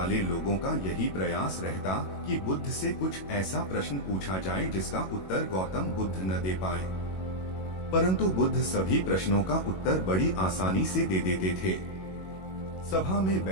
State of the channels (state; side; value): late; right; 21 ms